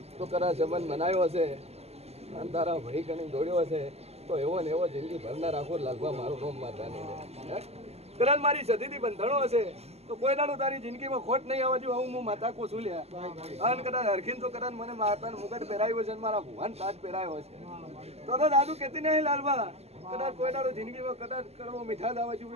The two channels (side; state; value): left; late; 0.30 ms